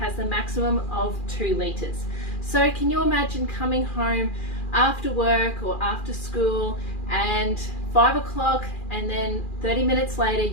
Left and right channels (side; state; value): right; late; 2.4 ms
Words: the maximum of 2 litres. So can you imagine coming home after work or after school and 5 o'clock, and then 30 minutes later